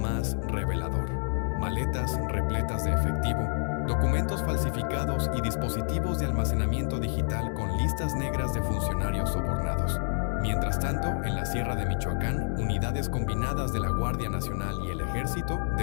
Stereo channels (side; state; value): right; silent; 56 dB below the other